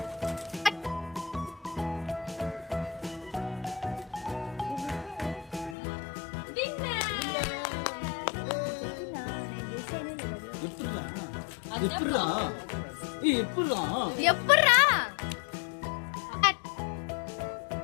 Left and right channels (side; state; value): right; drops out; at 5.8 s